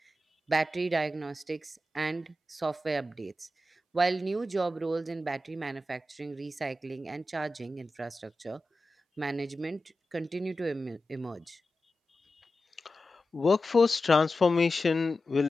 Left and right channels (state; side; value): normal; both; correlation 0.93